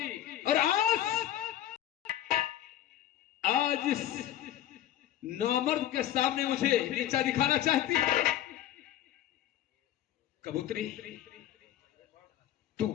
और आज इस नामर्द के सामने मुझे नीचा दिखाना चाहती है? कबूतरी,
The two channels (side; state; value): right; quieter; 12.2 dB